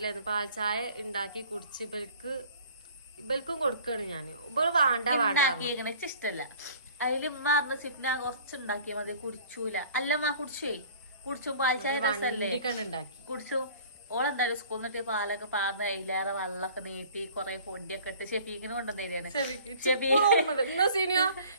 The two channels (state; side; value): inverted; both; correlation -0.49